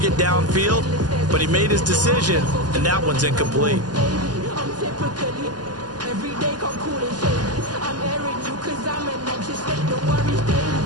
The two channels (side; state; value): left; late; 0.70 ms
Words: downfield. But he made his decision, and that one's incomplete.